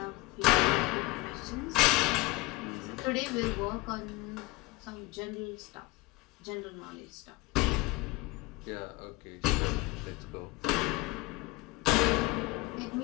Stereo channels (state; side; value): quieter; right; 21.7 dB